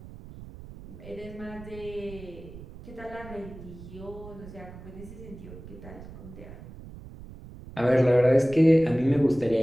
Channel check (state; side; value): noise; right; rumble, 15 dB below the sound